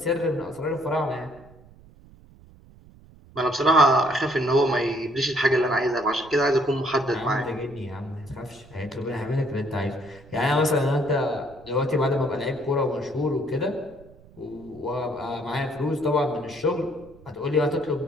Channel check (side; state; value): right; noise; rumble, 24 dB below the sound